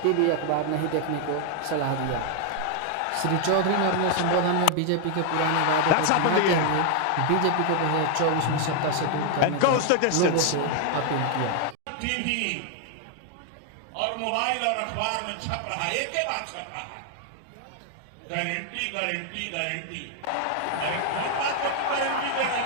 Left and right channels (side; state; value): both; different; correlation 0.00